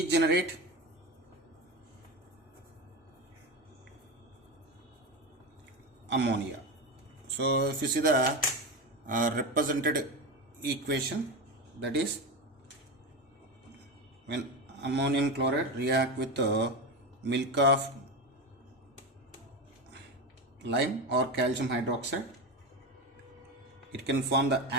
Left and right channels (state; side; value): normal; both; correlation 0.19